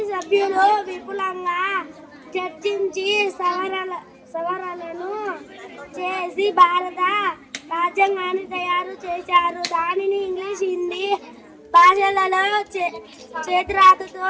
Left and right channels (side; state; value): both; identical; correlation 1.00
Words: సభ్యులు విపులంగా చర్చించి సవరణలను చేసి భారత రాజ్యాంగాన్ని తయారు చేశారు. దానిని ఇంగ్లీష్, హిందీ భాషలలో చేతిరాతతో